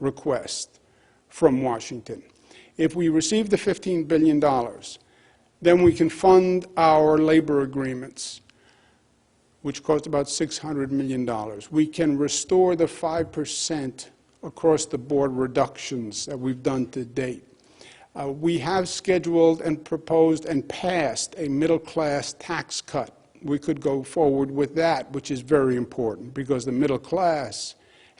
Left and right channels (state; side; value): identical; both; correlation 1.00